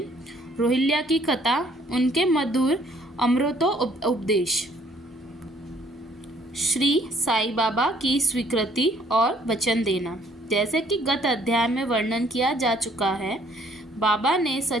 रोहिल्या की कथा, उनके मधुर अमृतो उपदेश। श्री साई बाबा की स्वीकृति और वचन देना। जैसे कि गत अध्याय में वर्णन किया जा चुका है, बाबा ने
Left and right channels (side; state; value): both; normal; correlation 0.63